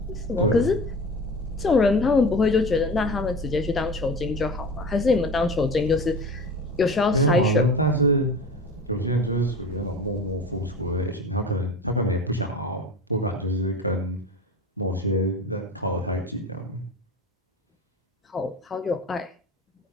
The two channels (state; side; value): normal; both; correlation 0.33